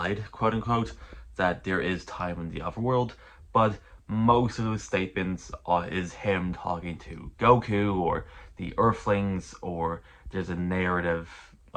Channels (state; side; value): identical; both; correlation 1.00